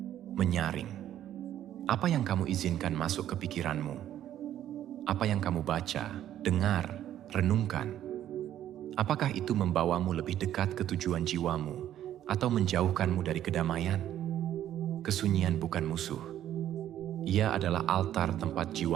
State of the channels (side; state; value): left; quieter; 11.6 dB